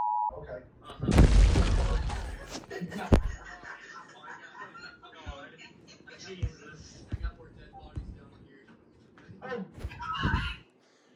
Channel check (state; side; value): identical; both; correlation 1.00